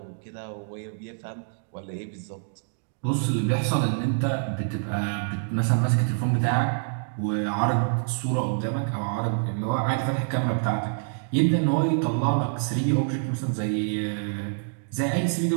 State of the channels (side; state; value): left; silent; digital silence